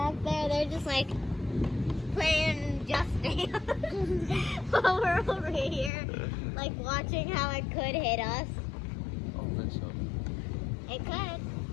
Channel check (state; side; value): drops out; right; at 5.9 s